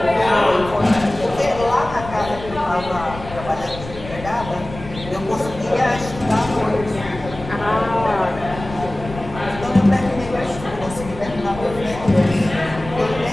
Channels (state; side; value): noise; left; rumble, 13 dB below the sound